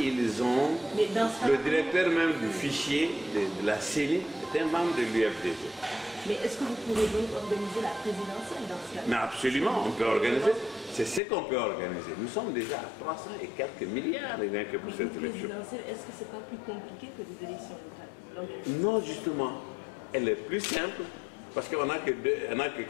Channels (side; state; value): right; drops out; at 11.2 s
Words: ont... Mais dans ce le directeur même du fichier de la CENI est un membre de l'UFDG. Mais est-ce que vous pourrez donc organiser la présidentielle dans ce cas? Mais absolument, on peut organiser. C'est ce qu'on peut organiser. Nous sommes déjà à 300 et quelques milliards rien que pour cette élection. Présidentielle, est-ce que ce n'est pas plus compliqué que des élections locales? Non, justement. Elle est plus simple parce qu'on n'a que